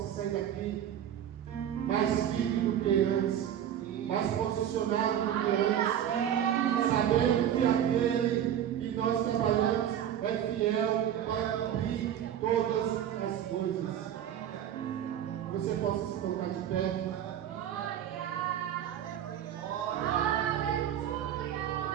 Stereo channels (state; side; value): quieter; left; 10.2 dB